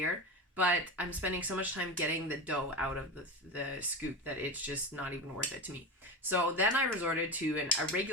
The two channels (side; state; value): both; normal; correlation 0.22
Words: but I'm spending so much time getting the dough out of the scoop that it's just not even worth it to me. So then I resorted to a